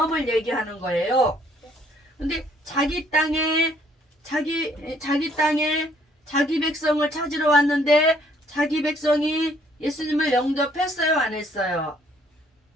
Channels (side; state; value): both; normal; correlation 0.64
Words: 얘기하는 거예요. 근데 자기 땅에 자기 백성을 찾으러 왔는데 자기 백성이 예수님을 영접했어요, 안 했어요?